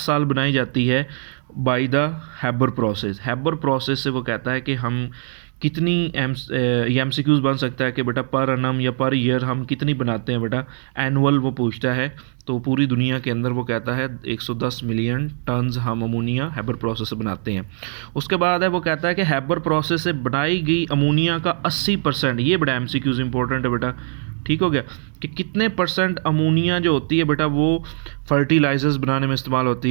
बनाई जाती है by the Haber process. Haber process से वो कहता है कि हम कितनी MCQs बन सकता है कि बेटा पर एनम या पर ईयर हम कितनी बनाते हैं बेटा, एनुअल वो पूछता है। तो पूरी दुनिया के अंदर वो कहता है 110 मिलियन टन्स हम अमोनिया हैबर प्रोसेस से बनाते हैं। उसके बाद है वो कहता है कि हैबर प्रोसेस से बनाई गई अमोनिया का 80%, ये बड़ा MCQs इंपॉर्टेंट है बेटा, ठीक हो गया, कि कितने % अमोनिया जो होती है बेटा वो फर्टिलाइजर्स बनाने में इस्तेमाल होती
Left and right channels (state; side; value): silent; left; 65 dB below the other